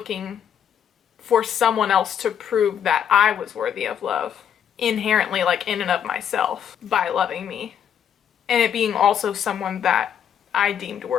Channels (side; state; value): right; quieter; 8.9 dB